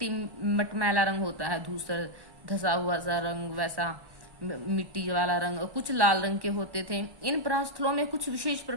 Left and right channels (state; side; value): late; left; 1.1 ms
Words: मटमैला रंग होता है धूसर, धसा हुआ सा रंग, वैसा मिट्टी वाला रंग। और कुछ लाल रंग के होते थे। इन प्रस्थलों में कुछ विशेष